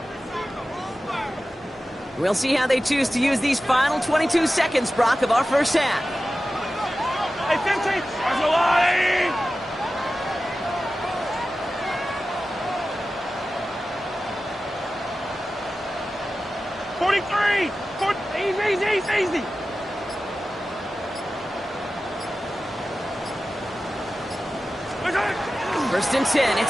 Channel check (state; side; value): normal; both; correlation 0.94